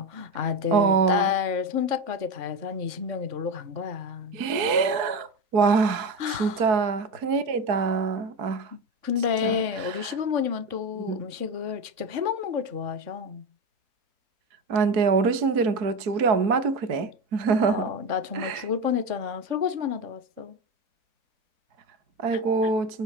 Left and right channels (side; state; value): left; late; 4.6 ms